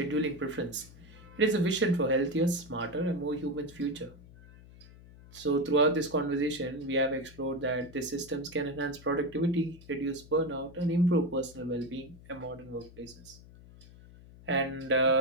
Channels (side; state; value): left; noise; hum, 20 dB below the sound